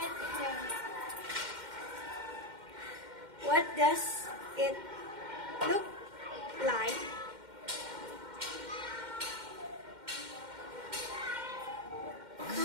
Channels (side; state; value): left; late; 2.1 ms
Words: hair. What does it look like?